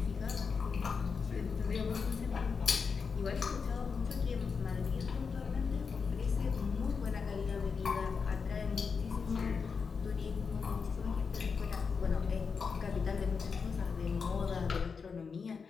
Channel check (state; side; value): quieter; right; 5.5 dB